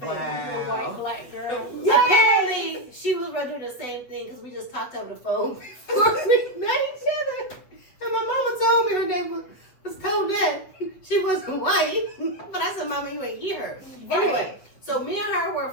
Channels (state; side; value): late; right; 8.2 ms